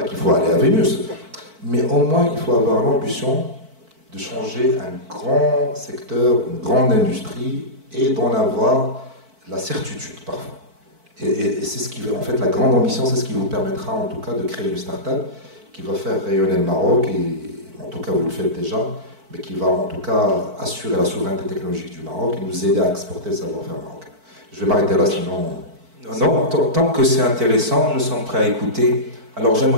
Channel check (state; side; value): late; left; 4.5 ms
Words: qu'il faut aller à Vénus, mais au moins il faut avoir l'ambition de changer un grand secteur, une grande industrie, et d'en avoir la certitude parfois. Et c'est ce qui veut, en fait, la grande ambition, c'est ce qui vous permettra en tout cas de créer une start-up qui va faire rayonner le Maroc, et en tout cas vous le faites déjà, mais qui va en tout cas assurer la souveraineté technologique du Maroc et nous aider à exporter le savoir-faire marocain. Je vais m'arrêter là, sinon... Non, tant que c'est intéressant, nous sommes prêts à écouter. Alors